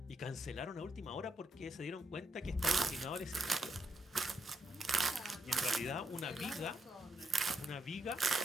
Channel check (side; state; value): both; normal; correlation 0.79